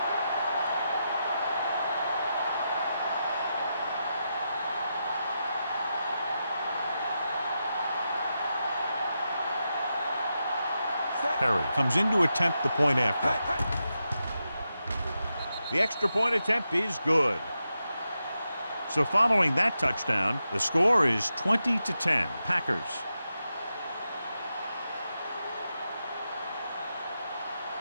Perry comes in to attempt the point after. The extra point attempt is good. So following that touchdown, the score is 20-10, Packers.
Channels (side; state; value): both; inverted; correlation -0.87